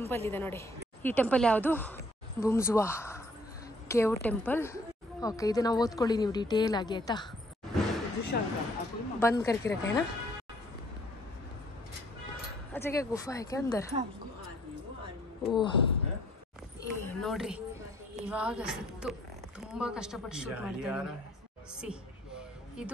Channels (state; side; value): normal; both; correlation 0.62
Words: ಇದೆ ನೋಡಿ. ಈ ಟೆಂಪಲ್ ಯಾವುದು? ಬುಮ್ಜುವಾ ಕೇವ್ ಟೆಂಪಲ್. ಓಕೆ, ಇದನ್ನ ಓದ್ಕೊಳ್ಳಿ ನೀವು ಡೀಟೇಲ್ ಆಗಿ, ಆಯ್ತಾ? ಬಂದ್ करके रखा है ना. अच्छा क्या गुफा है क्या अंदर? ಓಹ್, ನೋಡ್ರಿ ಇವಾಗ ಸಿಕ್ತು. ತುಂಬಾ ಕಷ್ಟಪಟ್ಟು ಶೂಟ್ ಮಾಡ್ತಿದ್ದೀನಿ. ಸಿ